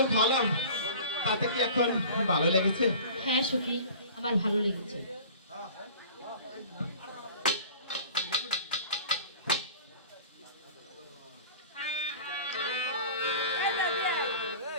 খাওয়ালাম তাতে কি এখন ভালো লেগেছে? হ্যাঁ সখী, আমার ভালো লেগেছে।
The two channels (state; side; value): inverted; both; correlation -0.41